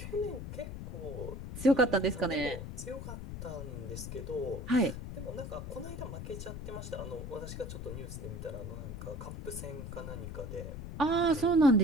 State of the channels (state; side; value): noise; left; rumble, 8 dB below the sound